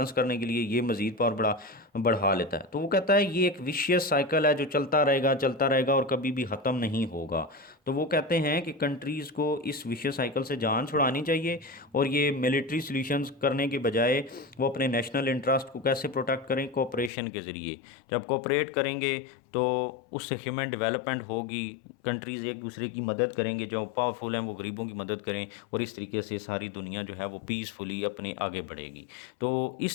करने के लिए, ये मज़ीद पावर बढ़ा लेता है। तो वो कहता है ये एक विशियस साइकिल है जो चलता रहेगा और कभी भी ख़त्म नहीं होगा। तो वो कहते हैं कि कंट्रीज़ को इस विशियस साइकिल से जान छुड़ानी चाहिए और ये मिलिट्री सॉल्यूशंस करने के बजाय वो अपने नेशनल इंटरेस्ट को कैसे प्रोटेक्ट करें, कोऑपरेशन के ज़रिए। जब कोऑपरेट करेंगे तो उससे ह्यूमन डेवलपमेंट होगी, कंट्रीज़ एक दूसरे की मदद करेंगे, जो पावरफुल हैं वो गरीबों की मदद करें, और इस तरीके से सारी दुनिया जो है वो पीसफुली अपने आगे बढ़ेगी। तो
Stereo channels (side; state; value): right; drops out; at 17.1 s